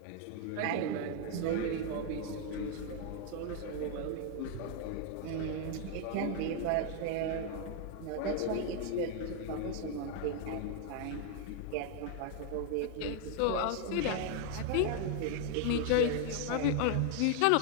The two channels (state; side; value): different; both; correlation 0.00